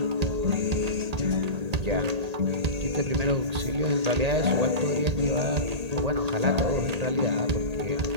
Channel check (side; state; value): left; late; 1.8 ms